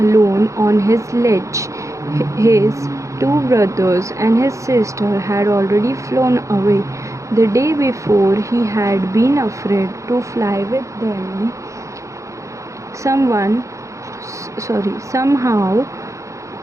on his ledge. His two brothers and his sister had already flown away. The day before he had been afraid to fly with them. Somehow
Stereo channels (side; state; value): left; late; 0.15 ms